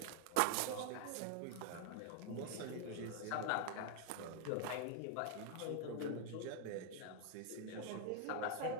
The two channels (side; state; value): both; different; correlation 0.00